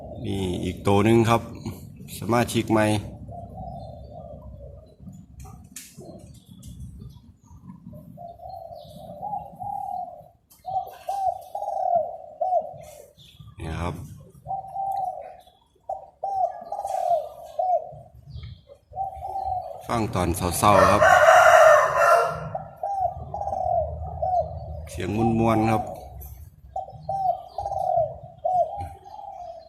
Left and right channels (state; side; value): identical; both; correlation 1.00